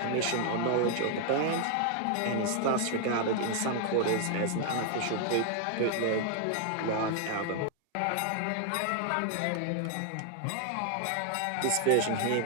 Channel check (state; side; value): different; both; correlation 0.00